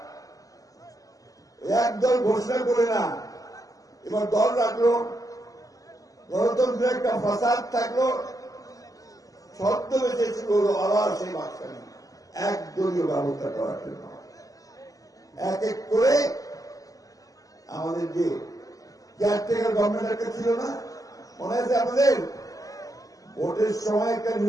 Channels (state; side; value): late; right; 0.17 ms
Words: একদল ঘোষণা করে না, এবার দল রাখলো, গণতন্ত্রের একটা ফাসাদ থাকলো, ছদ্মবেশে শুরু হলো আবার সেই বাকশালী একদলীয় ব্যবস্থা করার জন্য। এক এক করে আমাদের যে কেয়ারটেকার গভর্নমেন্ট একটা ছিল না, মনে আছে আপনাদের? ভোটের সময় একটা